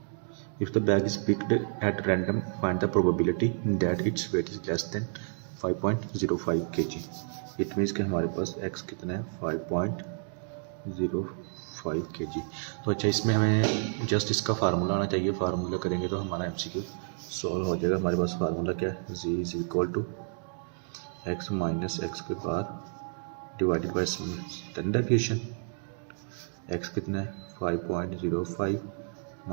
If the bag is picked at random, find the probability that its weight is less than 5.05 kg. It means कि हमारे पास x कितना है 5.05 kg। तो अच्छा, इसमें हमें जस्ट इसका फार्मूला आना चाहिए। फार्मूला करेंगे तो हमारा MCQ सॉल्व हो जाएगा। हमारे पास फार्मूला क्या है, z is equal to x minus X के बार divided by standard deviation. x कितना है 5.05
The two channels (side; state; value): left; silent; 58 dB below the other